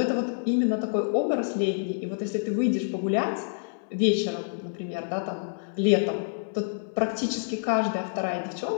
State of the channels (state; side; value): silent; right; 60 dB below the other